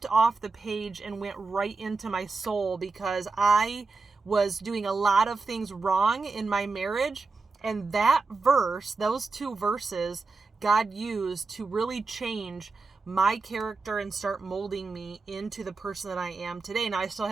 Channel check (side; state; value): left; quieter; 4.0 dB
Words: off the page and went right into my soul, because I was doing a lot of things wrong in my marriage. And that verse, those two verses, God used to really change my character and start molding me into the person that I am today. Now, I still